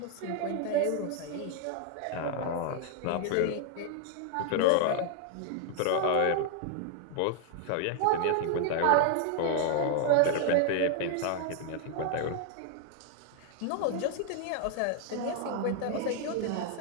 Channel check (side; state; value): both; different; correlation 0.00